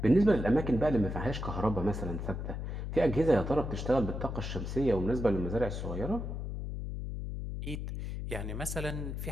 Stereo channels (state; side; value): noise; left; hum, 5 dB below the sound